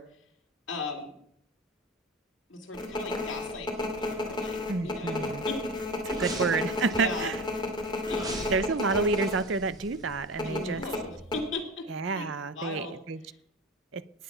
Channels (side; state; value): both; normal; correlation 0.31